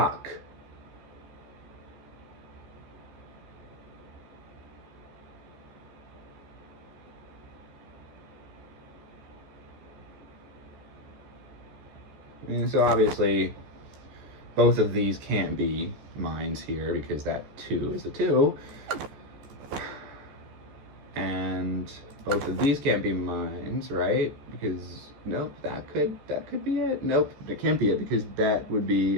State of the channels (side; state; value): left; late; 14 ms